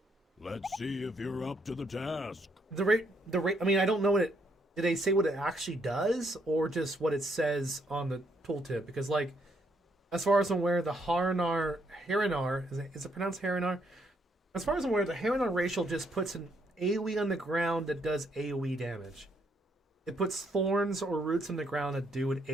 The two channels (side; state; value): both; normal; correlation 0.73